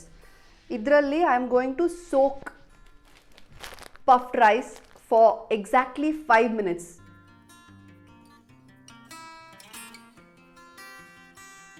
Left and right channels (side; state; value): both; identical; correlation 1.00